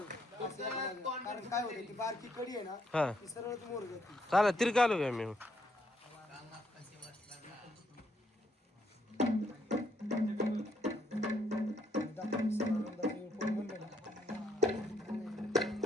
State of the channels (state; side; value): normal; both; correlation 0.73